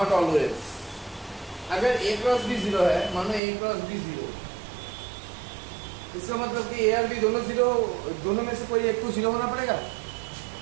ऑलवेज। अगर a क्रॉस b जीरो है, मानो a क्रॉस b जीरो, इसका मतलब कि a और b दोनों जीरो, दोनों में से कोई एक तो जीरो होना पड़ेगा।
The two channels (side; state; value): left; drops out; at 3.4 s